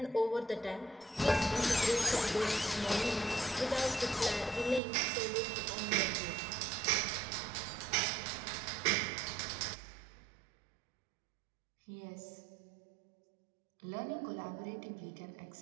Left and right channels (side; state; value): left; drops out; at 4.8 s